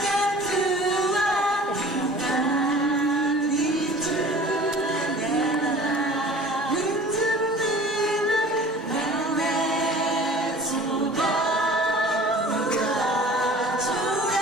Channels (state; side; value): normal; both; correlation 0.44